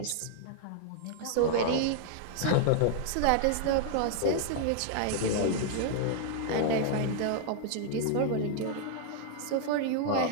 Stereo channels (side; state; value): both; different; correlation -0.01